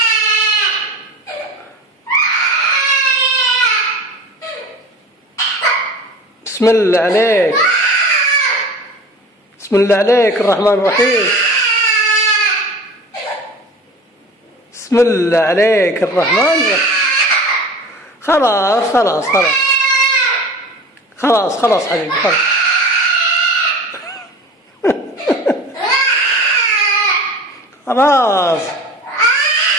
بسم الله عليك، بسم الله عليك الرحمن الرحيم. بسم الله عليك الرحمن الرحيم. خلاص خلاص خلاص خلاص خلاص حبيبي خلاص. خلاص.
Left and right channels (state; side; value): normal; both; correlation 0.38